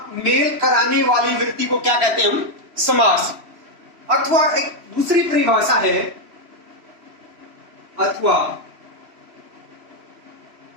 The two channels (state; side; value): late; left; 2.9 ms